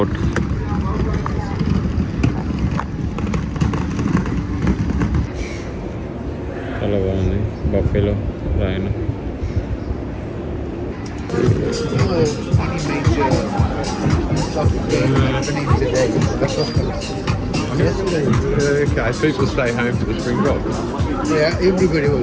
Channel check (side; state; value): both; identical; correlation 1.00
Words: చాలా బాగుంది. బఫేలో రాయను. Okay, people stay home for the Springbok. Yeah, everybody